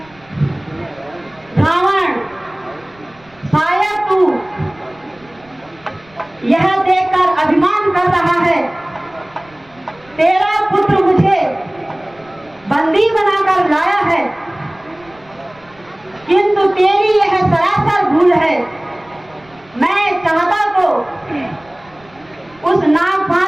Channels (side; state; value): right; noise; rumble, 28 dB below the sound